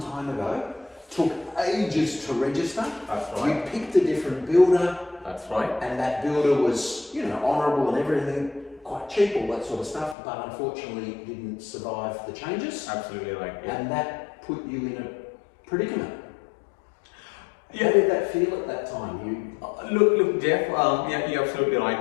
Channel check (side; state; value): right; drops out; at 10.2 s